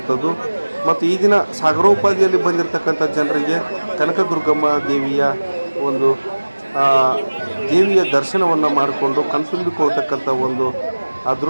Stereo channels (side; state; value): both; inverted; correlation -1.00